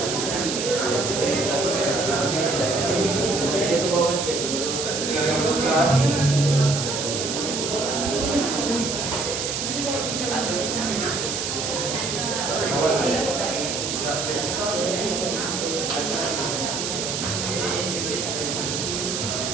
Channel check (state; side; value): noise; right; hiss, 2 dB below the sound